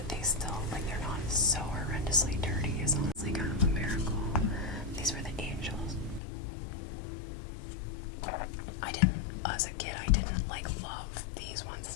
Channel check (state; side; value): drops out; right; at 6.2 s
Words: they still, like, they're not so horrendously dirty is honestly kind of a miracle. These were the angels. As a kid, I didn't like love